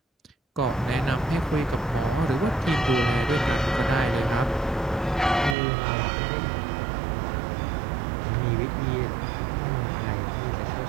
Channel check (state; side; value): drops out; left; at 5.6 s